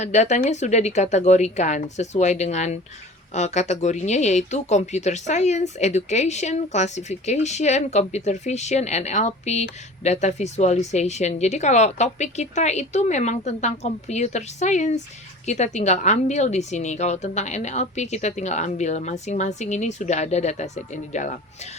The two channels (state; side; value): normal; both; correlation 0.41